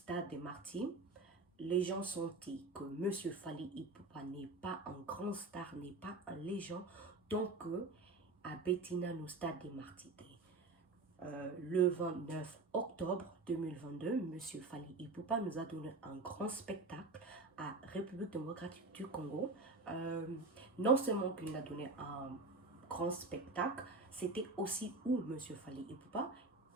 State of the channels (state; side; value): quieter; left; 3.4 dB